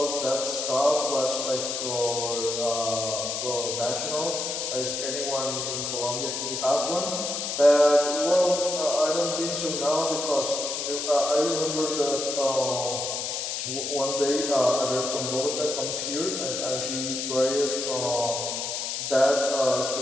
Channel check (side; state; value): left; noise; hiss, 3 dB below the sound